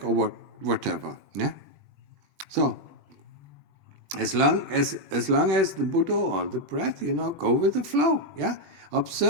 or whatever, So, as long as the Buddha or the breath, go with the flow,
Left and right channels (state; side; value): late; left; 21 ms